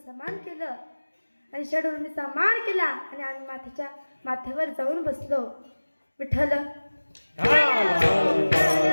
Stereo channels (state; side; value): inverted; both; correlation -1.00